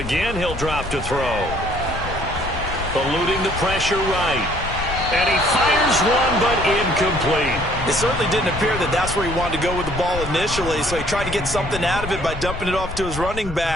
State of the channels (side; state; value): left; noise; rumble, 9 dB below the sound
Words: he'll drop to throw. Eluding the pressure right. And he fires one, but incomplete. It certainly didn't appear that that's where he wanted to go with the ball initially, so he tried to get something out of it by dumping it off to his running